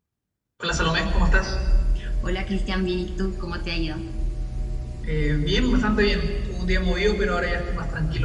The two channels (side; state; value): both; identical; correlation 1.00